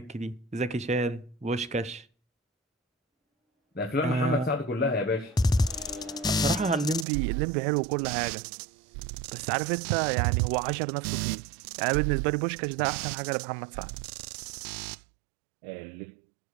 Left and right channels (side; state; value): left; drops out; at 7.1 s